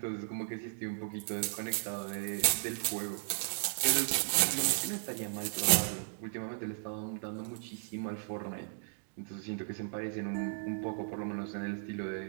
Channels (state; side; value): silent; left; digital silence